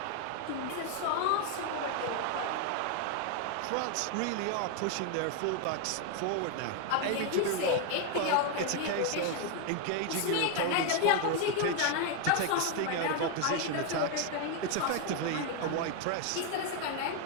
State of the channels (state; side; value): different; both; correlation 0.01